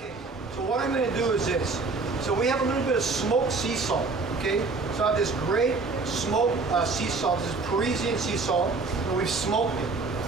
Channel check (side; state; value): left; quieter; 4.0 dB